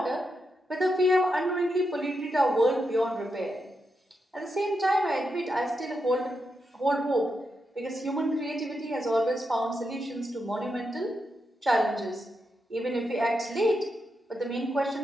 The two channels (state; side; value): normal; both; correlation 0.85